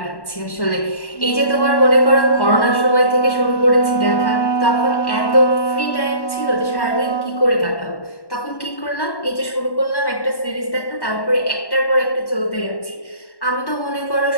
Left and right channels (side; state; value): right; late; 1.1 ms